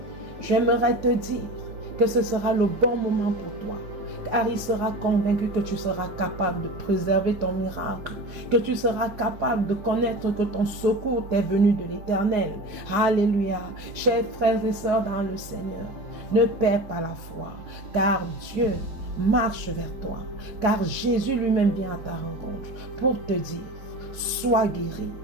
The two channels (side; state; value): left; late; 4.8 ms